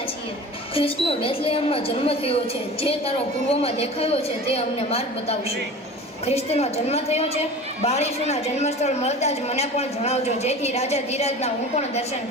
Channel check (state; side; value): normal; both; correlation 0.37